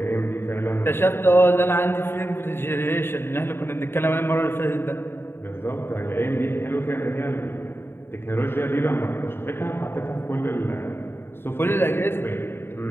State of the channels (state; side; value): late; right; 0.11 ms